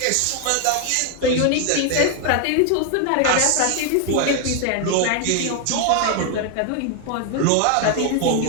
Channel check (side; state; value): both; different; correlation 0.01